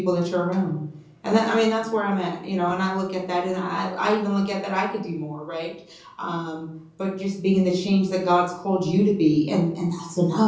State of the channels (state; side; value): identical; both; correlation 1.00